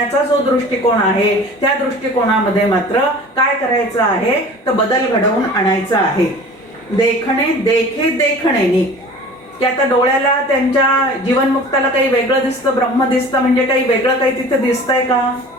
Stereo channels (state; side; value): normal; both; correlation 0.42